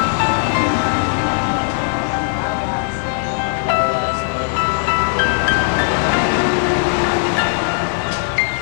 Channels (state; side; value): silent; right; digital silence